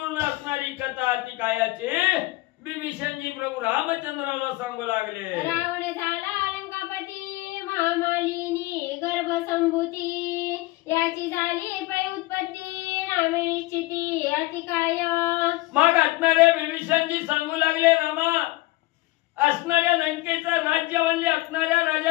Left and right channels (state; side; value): quieter; right; 20.2 dB